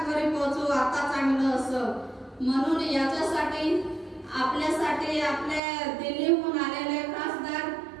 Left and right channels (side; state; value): left; drops out; at 5.6 s